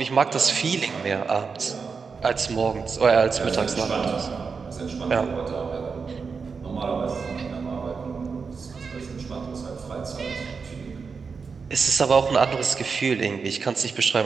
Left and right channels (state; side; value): quieter; left; 5.3 dB